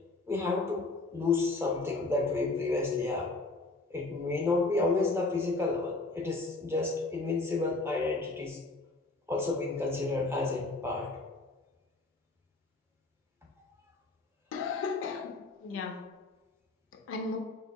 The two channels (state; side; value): quieter; right; 3.2 dB